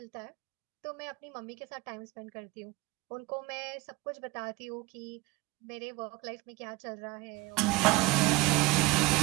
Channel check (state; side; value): quieter; left; 21.5 dB